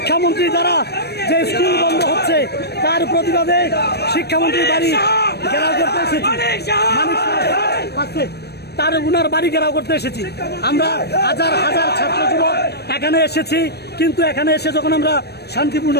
দ্বারা যে স্কুল বন্ধ হচ্ছে তার প্রতিবাদে শিক্ষামন্ত্রীর বাড়ি ঘেরাও করতে এসেছি। তার উনার বাড়ি ঘেরাও করতে এসেছি। আমরা হাজার হাজার ছাত্র যুবক এখানে এসেছি, কিন্তু এখানে এসে যখন আমরা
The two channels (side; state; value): right; late; 0.47 ms